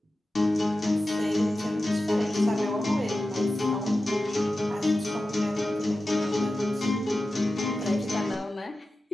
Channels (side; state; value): both; normal; correlation 0.93